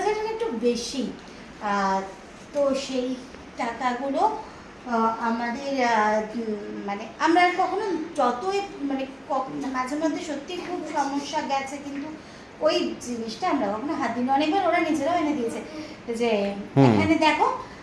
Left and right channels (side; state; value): both; identical; correlation 1.00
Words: টাকা একটু বেশি। তো সেই টাকাগুলো আমাদের মানে আমরা কখনো যতই মানে মাঝে মধ্যে সত্যি খুব সমস্যা গেছে, কিন্তু ওই জিনিসটা আমরা কখনো হাত দিই না। অনেকবার ওরা নিজেরাও এনে দিয়েছে যে এখানে দেখো,